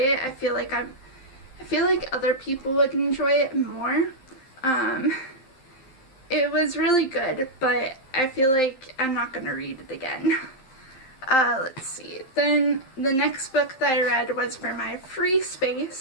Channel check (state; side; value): late; right; 12 ms